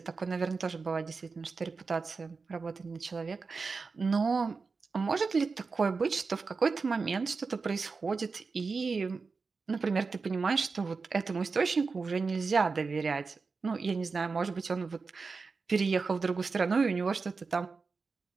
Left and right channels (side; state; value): left; quieter; 4.5 dB